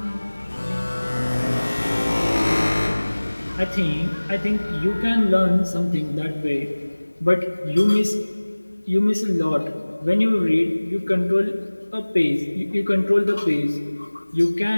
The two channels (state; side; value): inverted; both; correlation -1.00